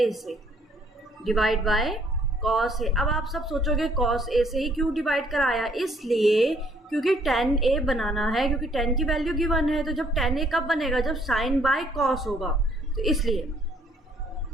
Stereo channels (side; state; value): both; normal; correlation 0.65